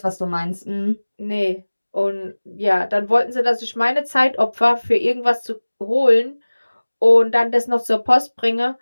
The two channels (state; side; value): inverted; both; correlation -1.00